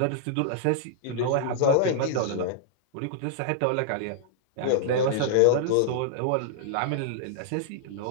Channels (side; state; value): both; different; correlation -0.01